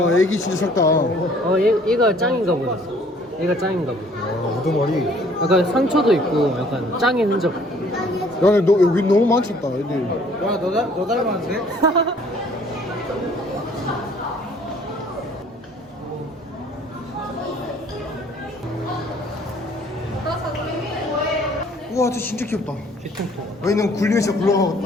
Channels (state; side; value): normal; both; correlation 0.57